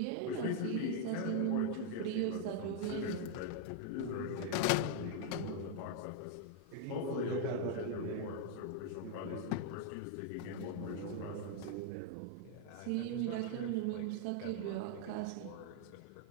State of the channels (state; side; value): different; both; correlation 0.00